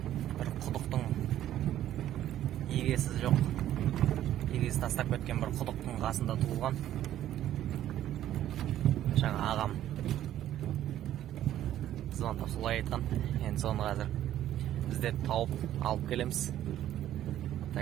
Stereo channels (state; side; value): quieter; left; 12.2 dB